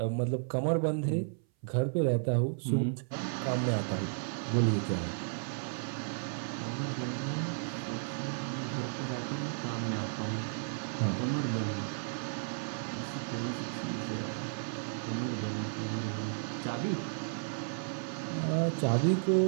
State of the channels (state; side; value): silent; left; 55 dB below the other